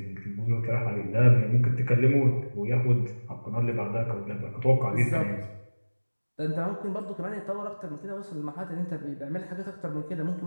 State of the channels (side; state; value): both; inverted; correlation -1.00